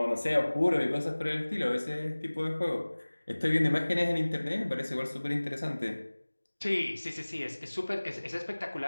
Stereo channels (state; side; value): inverted; both; correlation -1.00